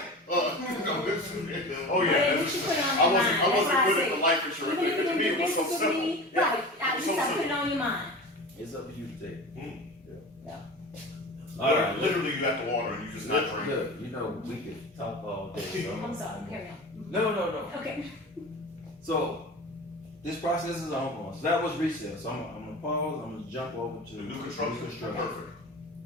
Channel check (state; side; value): normal; both; correlation 0.33